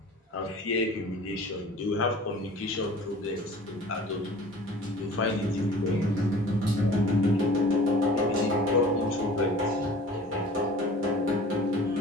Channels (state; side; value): normal; both; correlation 0.45